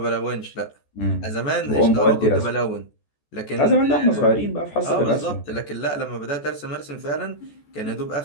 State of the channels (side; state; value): right; late; 14 ms